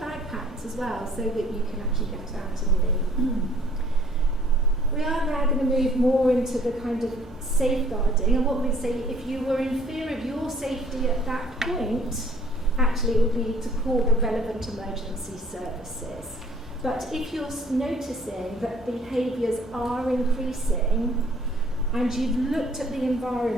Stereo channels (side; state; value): both; normal; correlation 0.58